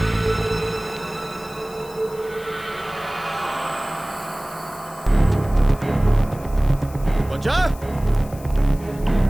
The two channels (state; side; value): noise; left; hiss, 21 dB below the sound